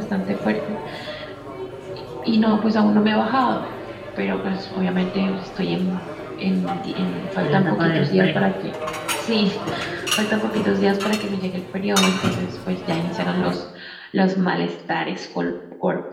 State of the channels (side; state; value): both; identical; correlation 1.00